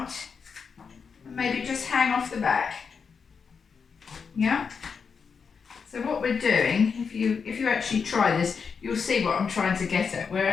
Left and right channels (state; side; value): quieter; right; 5.8 dB